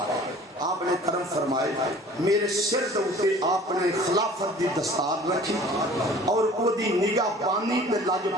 آپ نے کرم فرمائے. میرے سر دوتے آپ نے خلافت دی دستار رکھی اور وہ دی نگاہ بانی تے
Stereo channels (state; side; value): normal; both; correlation 0.48